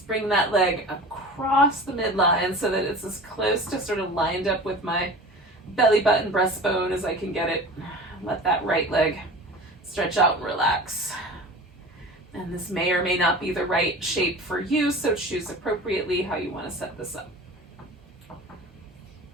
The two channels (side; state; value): both; normal; correlation 0.36